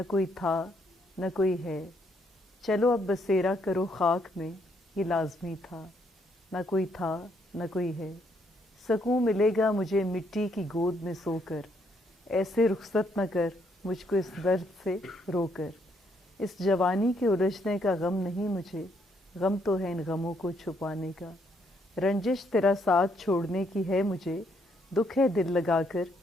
کوئی تھا نہ کوئی ہے، چلو اب بسیرا کرو خاک میں، یہ لازمی تھا. نہ کوئی تھا نہ کوئی ہے، سکون ملے گا مجھے مٹی کی گود میں سو کر، ایسے رخصت نہ کر مجھ کو اس درد سے رو کر. اس جوانی کے الجھنے کا غم نہیں مجھے، غم تو ہے ان غموں کو چھپانے کا. رنجش تیرا ساتھ چھوڑنے کی ہے مجھے، دکھ ہے دل لگا کر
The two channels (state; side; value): normal; both; correlation 0.72